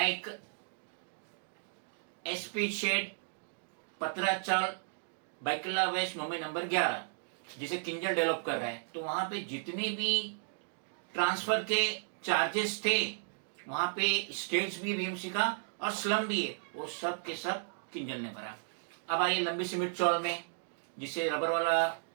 SP shed, Patra Chawl, Byculla west Mumbai number 11, जिसे किंजल डेवलप कर रहा है, तो वहां पे जितने भी ट्रांसफर के चार्जेस थे, वहां पे स्टेट्स भी BMC का और स्लम भी है, वो सब के सब किंजल ने भरा। अब आइए लंबी सिमेंट चौल में, जिसे रबर वाला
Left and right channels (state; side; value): silent; left; digital silence